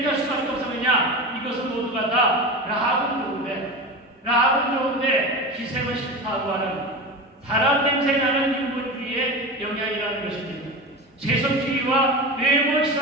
할 수밖에 없었느냐? 이것은 모두가 다 라합은 좋은데 기생은 싫다고 하는 사람 냄새 나는 인본주의의 영향이라는 것입니다. 세속주의와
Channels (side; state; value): both; normal; correlation 0.26